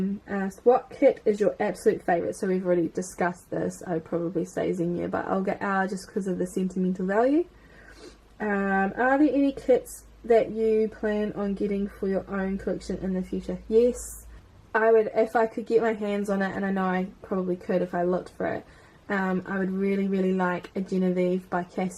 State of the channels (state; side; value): identical; both; correlation 1.00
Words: asked, what kit is your absolute favourite? So we've already discussed this. I would probably say Xenia, but I'll get R just because of the sentimental value. Are there any kits that you plan on getting for your own collection in the future? Yes, I would, if I could get my hands on it, and I know I probably could if I looked for it. I would really like a Genevieve by